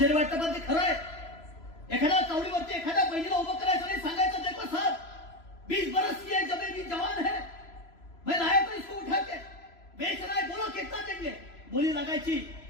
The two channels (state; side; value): late; right; 3.0 ms